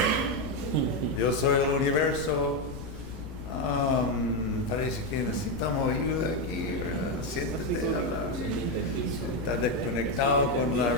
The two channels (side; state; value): left; noise; rumble, 13 dB below the sound